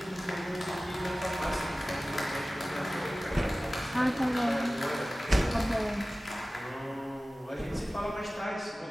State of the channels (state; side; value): normal; both; correlation 0.97